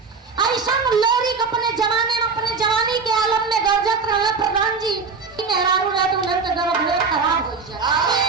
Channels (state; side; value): quieter; left; 4.9 dB